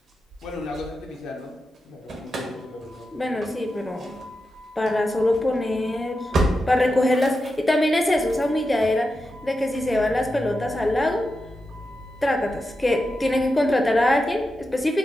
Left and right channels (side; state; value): both; normal; correlation 0.89